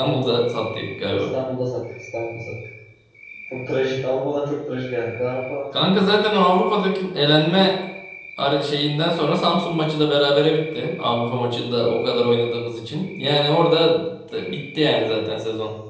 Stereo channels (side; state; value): both; identical; correlation 1.00